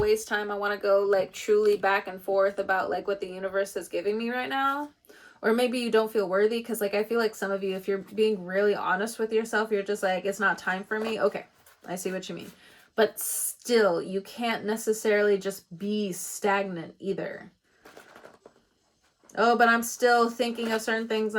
waste time, I want to go like truly back and forth about like what the universe is giving me right now, or maybe you don't feel worthy, because like I feel like some of you, if you're being really honest with yourself, you're just like, it's not time for me. Okay, I see what you mean. But still, you can't necessarily just be stagnant either. Oh, but I'm still thinking of certain things.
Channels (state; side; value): identical; both; correlation 1.00